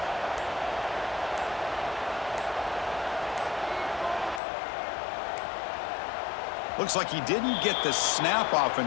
Looks like he didn't get the snap off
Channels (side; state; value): right; drops out; at 4.4 s